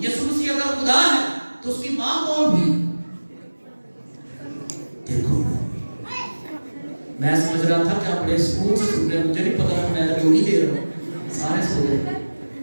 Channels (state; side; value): inverted; both; correlation -1.00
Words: یسوع مسیح اگر خدا ہے تو اس کی ماں کون ہوئی؟ دیکھو میں سمجھ رہا تھا کہ آپ بڑے سکون سے سن رہے ہیں، مجھے نہیں پتا کہ میں جو نہیں دے رہا ہوں، سارے سو گئے۔